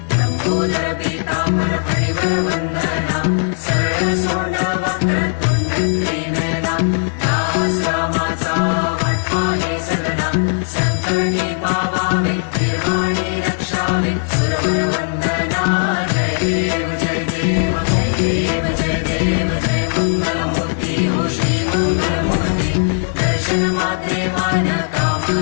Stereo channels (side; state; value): right; silent; digital silence